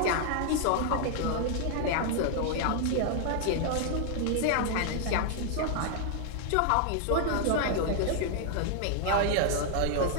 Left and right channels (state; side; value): different; both; correlation 0.00